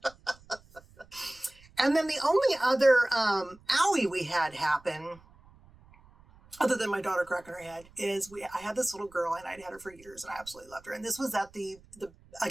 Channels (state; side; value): noise; right; rumble, 25 dB below the sound